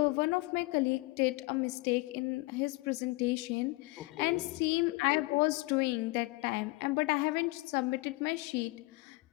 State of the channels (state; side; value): quieter; right; 23.3 dB